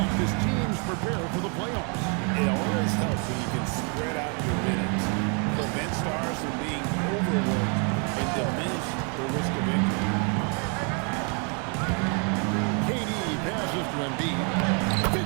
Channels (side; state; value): left; quieter; 37.2 dB